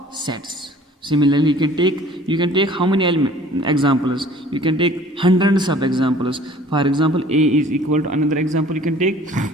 sets. Similarly, you can take how many examples? You can take hundreds of examples. For example, A is equal to another example. You can take.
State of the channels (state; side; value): normal; both; correlation 0.51